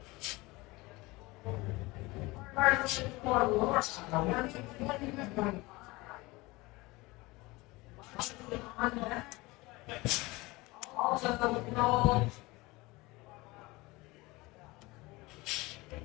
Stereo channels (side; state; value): right; quieter; 22.2 dB